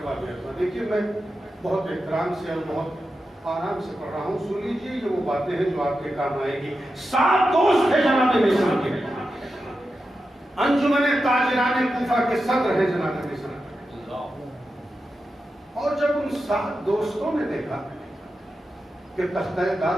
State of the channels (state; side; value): normal; both; correlation 0.90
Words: ارباب۔ دیکھیے میں بہت احترام سے اور بہت آرام سے پڑھ رہا ہوں، سن لیجیے، یہ وہ باتیں ہیں جو آپ کے کام آئے گی۔ 7 دوست تھے جناب میثم کے، انجمن تاجران کوفہ کے صدر ہیں جناب میثم۔ اور جب ان 7 دوستوں نے دیکھا کہ تختہ دار